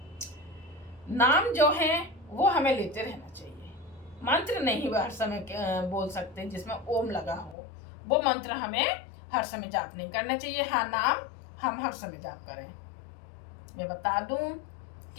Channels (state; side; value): drops out; right; at 7.6 s